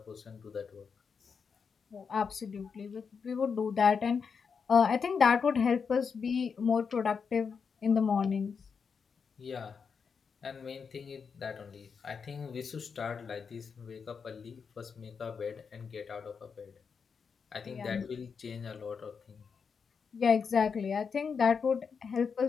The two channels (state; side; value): quieter; right; 5.9 dB